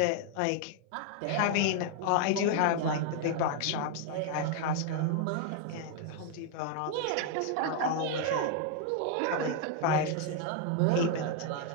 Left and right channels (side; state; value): both; different; correlation 0.00